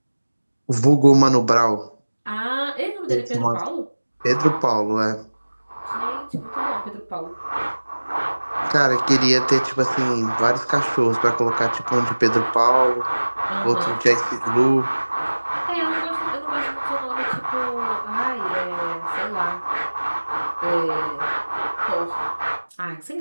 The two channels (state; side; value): inverted; both; correlation -1.00